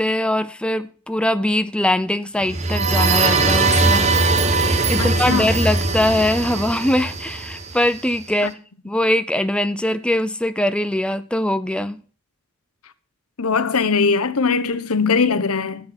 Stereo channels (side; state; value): both; normal; correlation 0.48